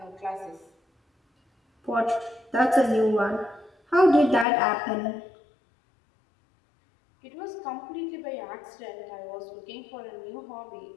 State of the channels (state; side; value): drops out; right; at 4.5 s